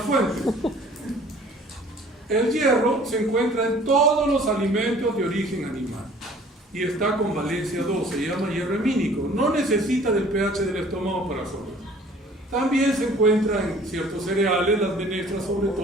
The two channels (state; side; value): normal; both; correlation 0.52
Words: fuentes. El hierro se encuentra en todos los alimentos de origen animal y está con valencia 2, se llama hierro hemínico, no necesita del pH del estómago para absorber. También se encuentra en ciertos cereales, las menestras sobre